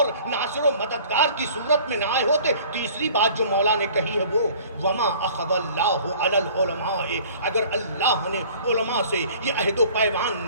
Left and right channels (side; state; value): both; inverted; correlation -0.49